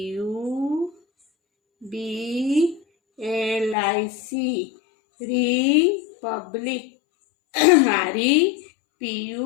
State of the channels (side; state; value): right; drops out; at 3.8 s